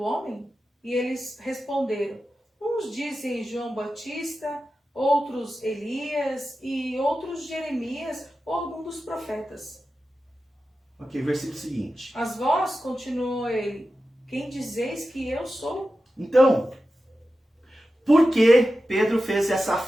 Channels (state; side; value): normal; both; correlation 0.92